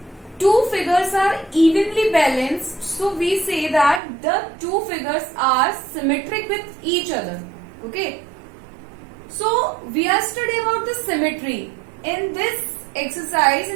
two figures are evenly balanced, so we say that the two figures are symmetric with each other. Okay, so we are studying about the symmetry. In this exercise,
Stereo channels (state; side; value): drops out; left; at 4.0 s